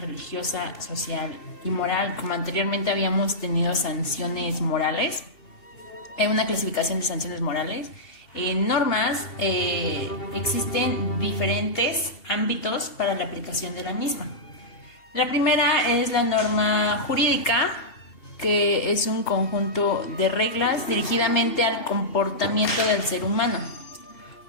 religiosa, social y moral. Como anteriormente habíamos tenido sanciones morales, una clasificación de sanciones morales. En normas existen diferentes ámbitos para la aplicación de la misma. La primera es la norma jurídica, que es un conjunto de reglas dirigidamente al comportamiento del ser humano.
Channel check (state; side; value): late; right; 2.7 ms